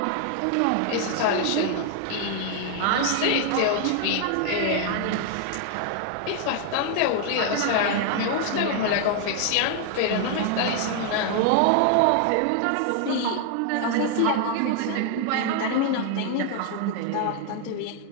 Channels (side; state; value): both; different; correlation 0.00